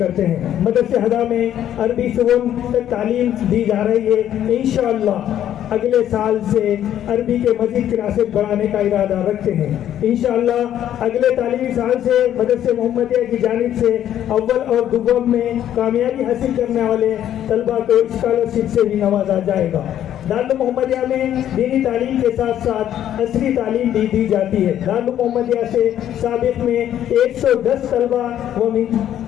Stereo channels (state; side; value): quieter; right; 11.0 dB